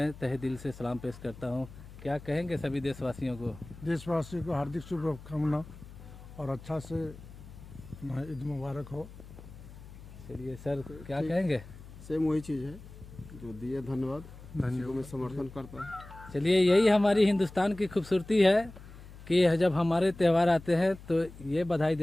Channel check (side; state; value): left; noise; hum, 17 dB below the sound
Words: तहे दिल से सलाम पेश करता हूँ। क्या कहेंगे सभी देशवासियों को? देशवासियों को हार्दिक शुभकामना और अच्छा से ईद मुबारक हो। चलिए सर, क्या कहेंगे? सेम वही चीज़ है जो दिए, धन्यवाद को मैं समर्थन करता हूँ। चलिए, यही हमारी हिंदुस्तान की खूबसूरती है कि जब हमारे त्यौहार आते हैं तो ये बधाई